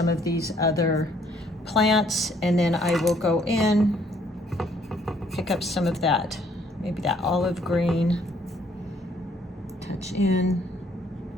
of these other plants, and then I will go in, pick up some of that, maybe that olive green, touch in,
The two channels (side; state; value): both; normal; correlation 0.65